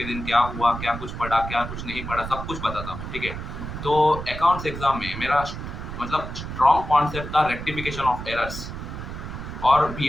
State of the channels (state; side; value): noise; right; rumble, 8 dB below the sound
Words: दिन क्या हुआ, क्या कुछ पढ़ा, क्या कुछ नहीं पढ़ा, सब कुछ बताता हूँ, ठीक है? तो अकाउंट्स एग्ज़ाम में मेरा मतलब स्ट्रॉन्ग कॉन्सेप्ट था रेक्टिफिकेशन ऑफ एरर्स और